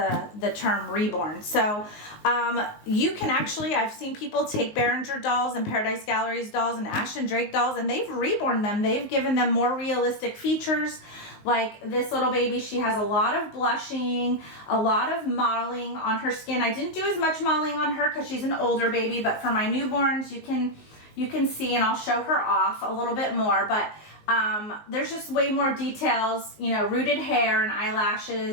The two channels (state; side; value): late; right; 19 ms